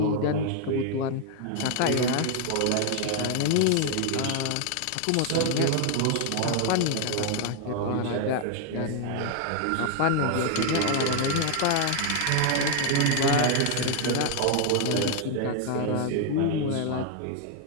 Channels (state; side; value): different; both; correlation 0.00